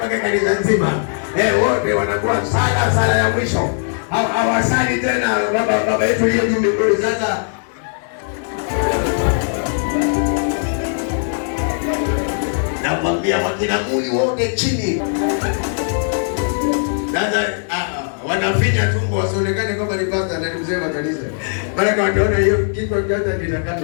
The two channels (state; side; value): silent; right; digital silence